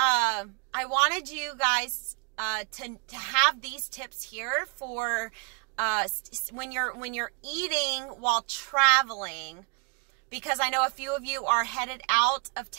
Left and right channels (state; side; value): quieter; left; 33.0 dB